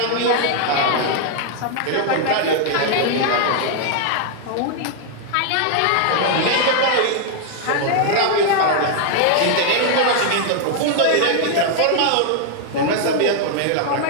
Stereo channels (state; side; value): different; both; correlation 0.00